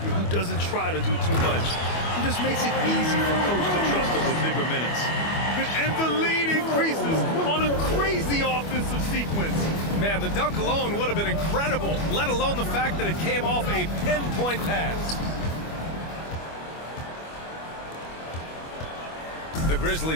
who doesn't try to do too much. He just makes it easy for coach to trust him with bigger minutes. And the lead increases on a crazy offensive sequence. Man, the dunk alone would have been incredible, let alone the fact that it came off a pinpoint pass. The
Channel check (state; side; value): late; right; 25 ms